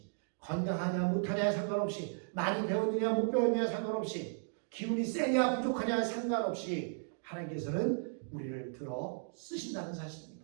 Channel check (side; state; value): left; silent; digital silence